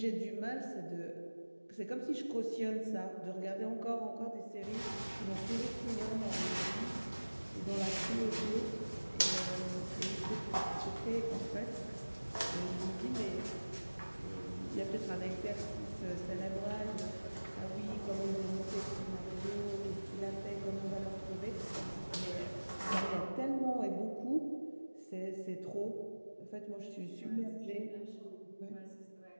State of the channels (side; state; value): both; inverted; correlation -1.00